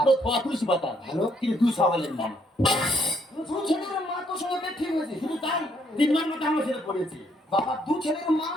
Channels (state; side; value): normal; both; correlation 0.70